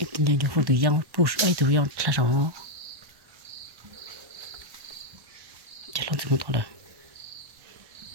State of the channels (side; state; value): left; late; 1.1 ms